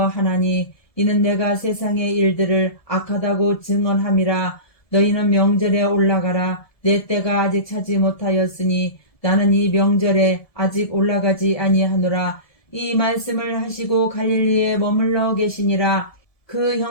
이는 내가 세상의 일들을 악하다고 증언함이라. 너희는 명절에 올라가라. 내 때가 아직 차지 못하였으니 나는 이 명절에 아직 올라가지 아니하노라. 이 말씀을 하시고 갈릴리에 머물러 계시니라. 그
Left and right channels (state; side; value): late; right; 1.7 ms